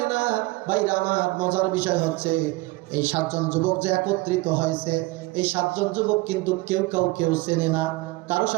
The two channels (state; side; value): quieter; left; 21.7 dB